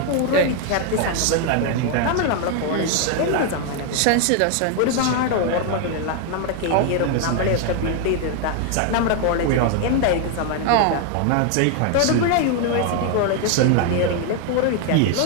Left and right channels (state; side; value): different; both; correlation 0.01